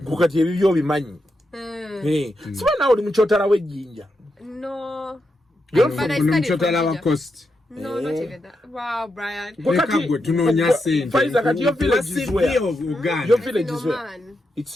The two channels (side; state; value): both; normal; correlation 0.85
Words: Kukati ebibyo bimanyi. Siba nawe oli mukyotala w'ejjinja. No. You're from Mchotala wa Coast. No, not even that. Wow, Brian. Pfizer, kati your village is where? Your village is where?